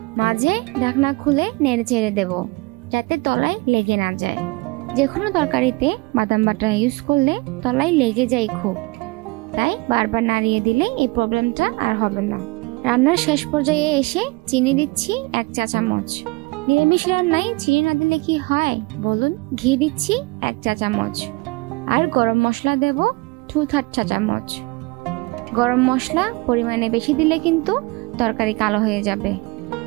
মাঝে ঢাকনা খুলে নেড়ে চেড়ে দেব, যাতে তলায় লেগে না যায়। যে কোনো তরকারিতে বাদাম বাটা ইউজ করলে তলায় লেগে যায় খুব, তাই বারবার নাড়িয়ে দিলে এই প্রবলেমটা আর হবে না। রান্নার শেষ পর্যায়ে এসে চিনি দিচ্ছি 1 চা চামচ। নিরামিষ রান্নায় চিনি না দিলে কি হয় বলুন? ঘি দিচ্ছি 1 চা চামচ আর গরম মশলা দেব 2/3 চা চামচ। গরম মশলা পরিমাণে বেশি দিলে কিন্তু তরকারি কালো হয়ে যাবে।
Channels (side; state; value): left; quieter; 25.1 dB